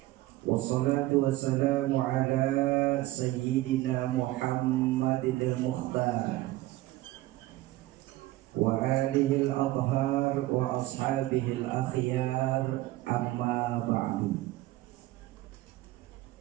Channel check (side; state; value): left; quieter; 17.4 dB